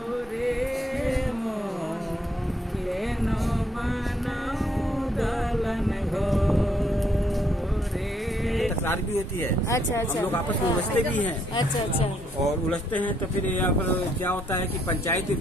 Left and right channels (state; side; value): normal; both; correlation 0.71